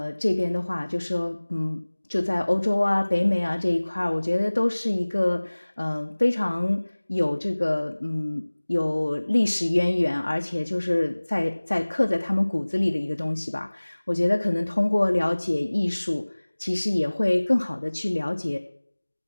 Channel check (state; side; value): inverted; both; correlation -1.00